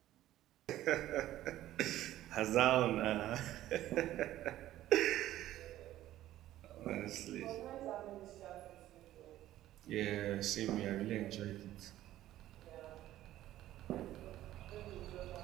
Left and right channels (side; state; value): left; quieter; 13.9 dB